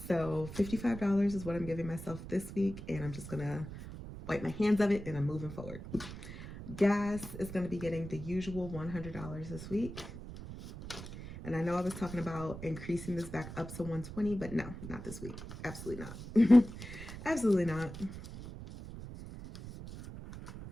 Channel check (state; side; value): noise; right; rumble, 11 dB below the sound